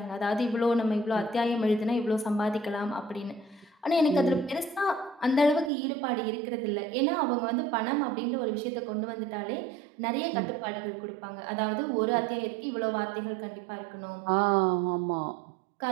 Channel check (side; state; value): left; drops out; at 5.7 s